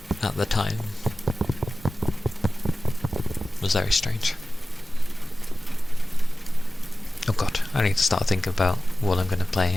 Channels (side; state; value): both; normal; correlation 0.95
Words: At the time. It was very strange. Oh god, I need to start thinking about what I'm gonna play